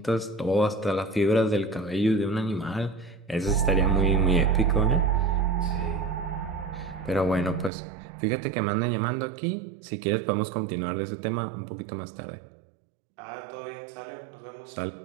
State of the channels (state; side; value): drops out; left; at 7.7 s